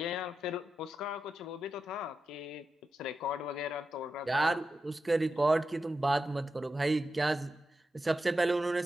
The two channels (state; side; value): normal; both; correlation 0.89